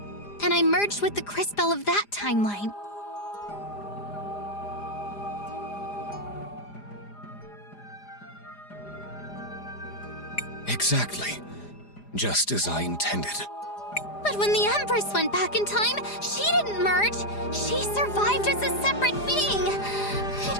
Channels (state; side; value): late; right; 4.9 ms